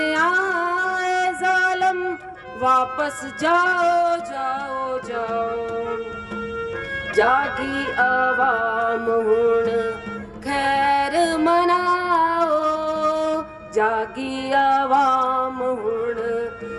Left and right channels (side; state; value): both; identical; correlation 1.00